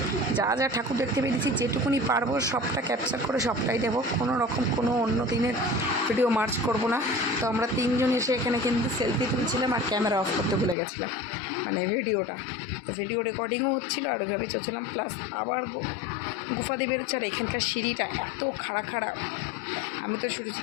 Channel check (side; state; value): right; drops out; at 10.8 s